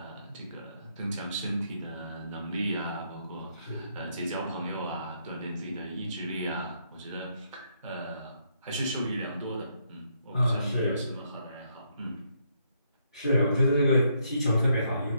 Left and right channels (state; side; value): inverted; both; correlation -0.74